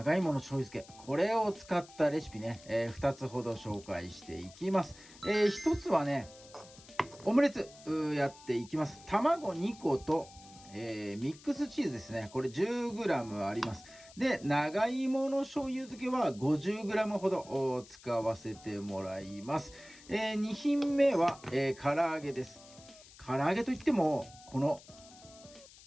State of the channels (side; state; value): left; noise; hiss, 21 dB below the sound